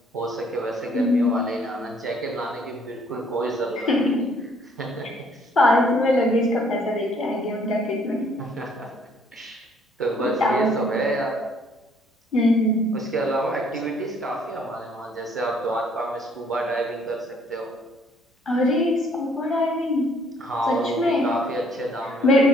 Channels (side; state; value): both; normal; correlation 0.63